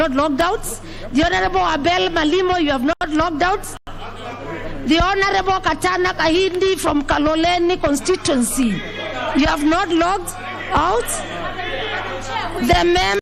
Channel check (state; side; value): identical; both; correlation 1.00